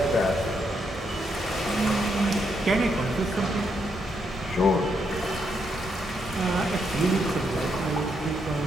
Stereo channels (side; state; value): both; normal; correlation 0.78